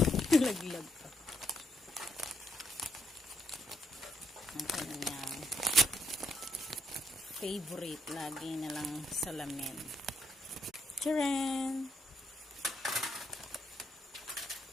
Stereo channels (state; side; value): normal; both; correlation 0.75